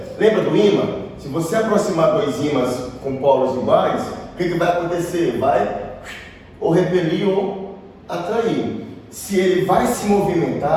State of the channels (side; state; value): both; identical; correlation 1.00